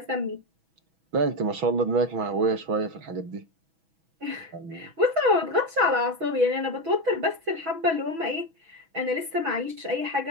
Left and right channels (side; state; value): left; late; 6.1 ms